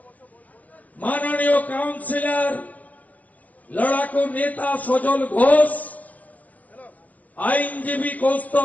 মাননীয় কাউন্সিলর লড়াকু নেতা সজল ঘোষ, আইনজীবী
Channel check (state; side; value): late; right; 0.078 ms